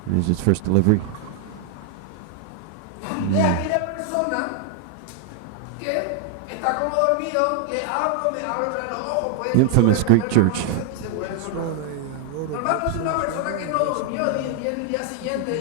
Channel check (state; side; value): different; both; correlation 0.00